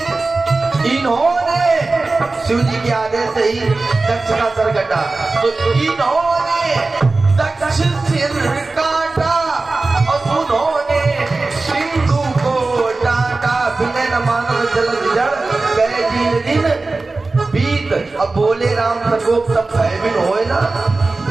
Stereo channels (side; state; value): left; quieter; 3.5 dB